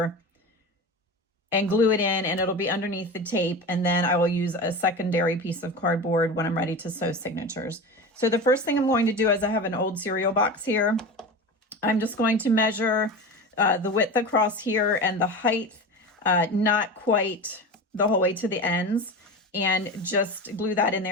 and glue it in, and it'll be underneath the tape. And then I will use a secondary piece of cardboard when I'm ready to sew signatures. So the first thing I'm going to do is I have an old cereal box here. I'm just going to measure the width across here and the height, not quite the whole way to the ends, and just glue that in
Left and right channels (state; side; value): normal; both; correlation 0.28